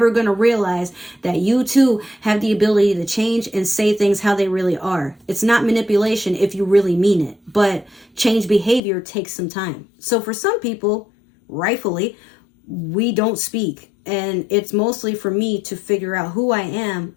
going to realize that you too have the ability to change and say things how they really are. It's not manipulation if you really mean it, but change behavior takes some time. So for some people, rightfully, we don't speak, and it's mostly for me to figure out who I am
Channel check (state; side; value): drops out; right; at 8.8 s